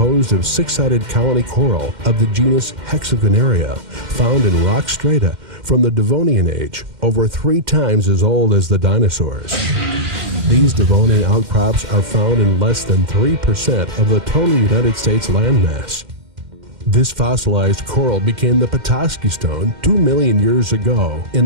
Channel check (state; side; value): late; left; 2.1 ms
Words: of six-sided colony coral of the genus Hexagonaria, found in rock strata from the Devonian age, over 3 times as old as the dinosaurs. These Devonian outcrops are found in less than 3% of the total United States landmass. This fossilized coral became the Petoskey Stone 2 million years ago